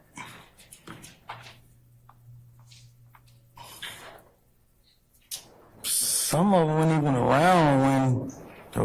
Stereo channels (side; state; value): both; identical; correlation 1.00